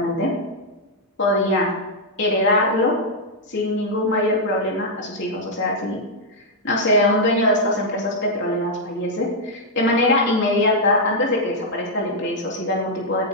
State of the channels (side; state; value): both; normal; correlation -0.03